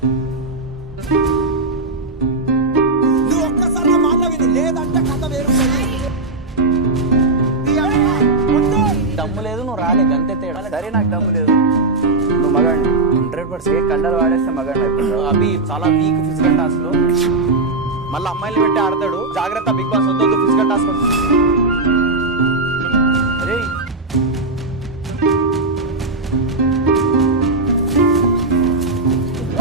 నువ్వు ఒక్కసారి మాట విను, లేదంటే కథ వేరు. దమ్ము లేదు, నువ్వు రాలే, గంతే తేడా. సరే నాకు దమ్ము లేదు, నువ్వు మగాడి 100% కండలు వాడేస్తే మగాడి అయిపోతావు. అవి చాలా వీక్ ఫిజికల్ టాస్క్ లో మళ్ళీ అమ్మాయిలు పెట్టి ఆడతాడు. జాగ్రత్త బిగ్ బాస్, వద్దు ఫిజికల్ టాస్క్. అరే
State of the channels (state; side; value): quieter; left; 3.2 dB